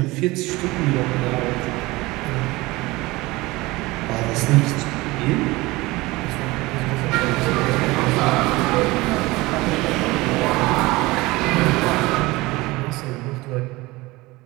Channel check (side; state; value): left; quieter; 21.1 dB